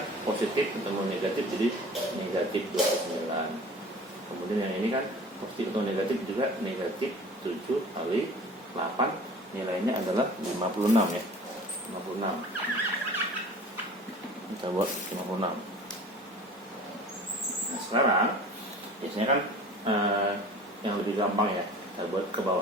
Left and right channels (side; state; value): both; normal; correlation 0.43